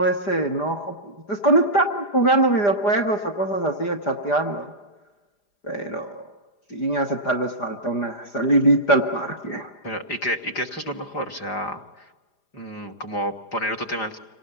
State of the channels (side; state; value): right; late; 4.9 ms